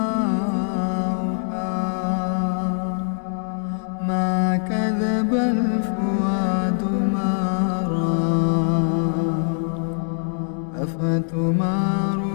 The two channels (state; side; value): silent; right; 63 dB below the other